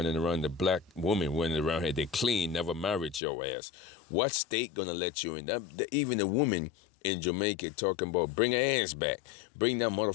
around, the black woman running around here, they clean, never married your ass. What state gonna let you in? Even a woman in Jamaica talking about bring her ass back. Bring that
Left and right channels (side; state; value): right; drops out; at 3.2 s